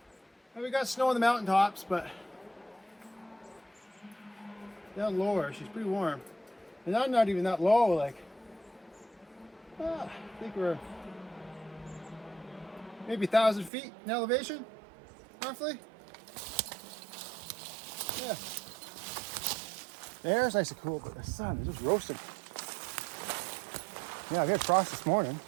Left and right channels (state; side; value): drops out; left; at 13.7 s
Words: We got snow on the mountaintops, but down lower, she's pretty warm. And I'm not even that low, like, I think we're maybe 1,000 feet in elevation, roughly. Yeah. The air's nice and cool, but the sun is just roasting. Yeah, we had frost this morning.